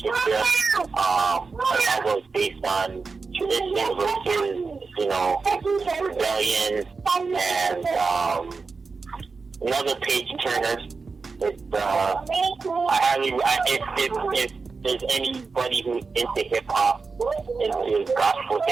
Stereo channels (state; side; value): quieter; left; 4.5 dB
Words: A novel is based on tradition versus, rebellion, and another page turner. If there's anybody who's into hip hop, into gospel